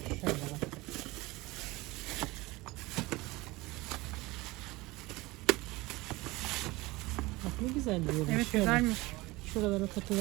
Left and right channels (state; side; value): quieter; left; 21.4 dB